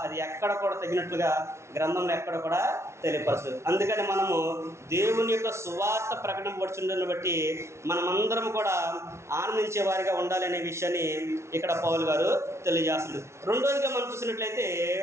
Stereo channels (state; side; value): late; left; 0.13 ms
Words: అది ఎక్కడ కూడా తగినట్లుగా గ్రంథంలో ఎక్కడ కూడా తెలియపరచదు. అందుకని మనము దేవుని యొక్క సువార్త ప్రకటింపబడుతుందని బట్టి మనమందరం కూడా ఆనందించే వారిగా ఉండాలి అనే విషయాన్ని ఇక్కడ పౌలు గారు తెలియజేస్తుంది. రెండోదిగా మనం